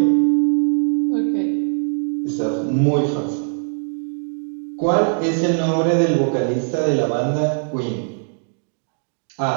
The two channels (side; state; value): left; silent; digital silence